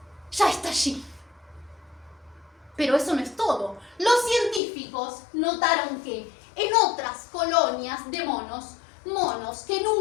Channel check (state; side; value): drops out; right; at 4.6 s